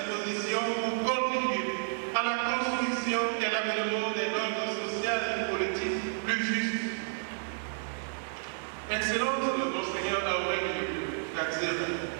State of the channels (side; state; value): left; silent; 56 dB below the other